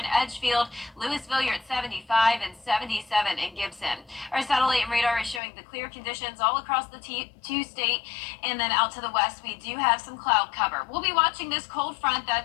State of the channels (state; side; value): drops out; right; at 5.4 s